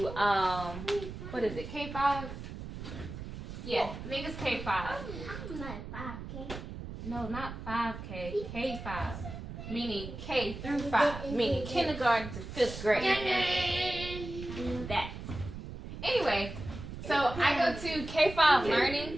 what is it, K5? Yeah, I think it's K5. No, not 5K, K5. Meaning K through 5, meaning kindergarten to 5th grade. That. Anyway, so I go to K5 Learning.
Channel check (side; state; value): right; noise; rumble, 9 dB below the sound